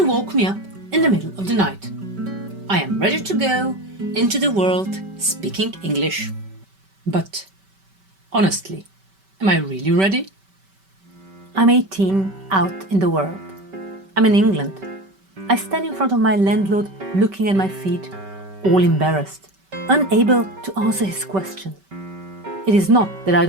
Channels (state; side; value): late; left; 5.2 ms